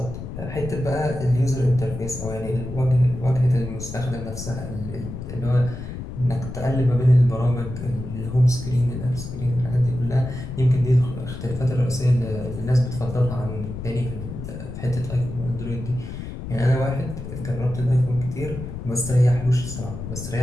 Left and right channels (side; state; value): left; noise; rumble, 9 dB below the sound